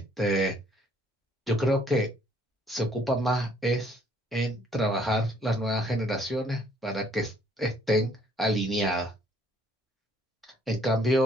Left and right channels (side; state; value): both; normal; correlation 0.63